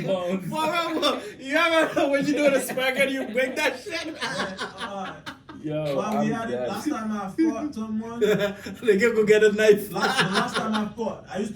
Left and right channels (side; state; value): both; identical; correlation 1.00